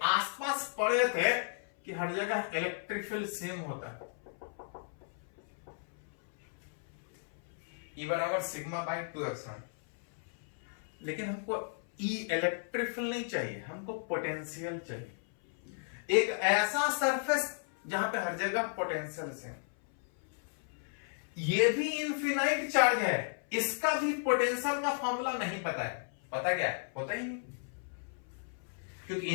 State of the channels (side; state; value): right; silent; 55 dB below the other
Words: आसपास पड़े थे कि हर जगह इलेक्ट्रिक फील्ड सेम होता है। E बराबर सिग्मा बाई 2 एप्सिलॉन। लेकिन हमको E इलेक्ट्रिक फील्ड नहीं चाहिए, हमको पोटेंशियल चाहिए। एक ऐसा सरफेस जहां पे हर जगह पोटेंशियल से, ये भी इनफिनाइट चार्ज है, इसका भी पोटेंशियल का फॉर्मूला नहीं पता है। पता क्या है? पता ही नहीं, क्योंकि